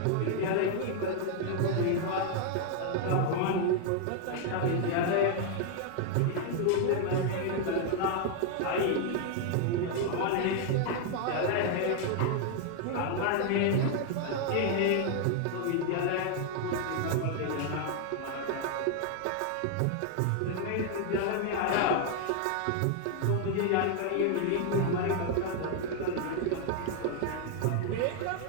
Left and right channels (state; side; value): different; both; correlation 0.00